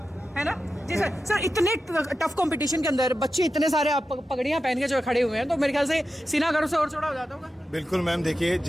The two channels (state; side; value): normal; both; correlation 0.91